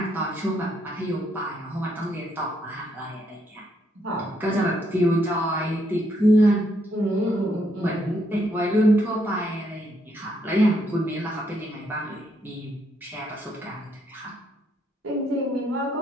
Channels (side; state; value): both; normal; correlation 0.74